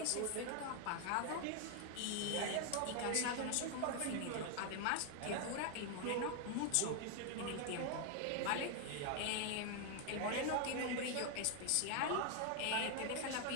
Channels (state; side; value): different; both; correlation 0.01